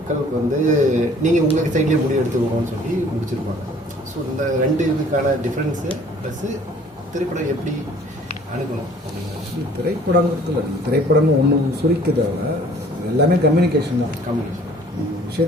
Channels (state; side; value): normal; both; correlation 0.55